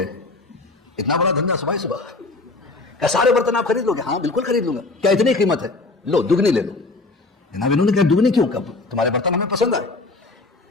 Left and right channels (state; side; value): quieter; right; 3.4 dB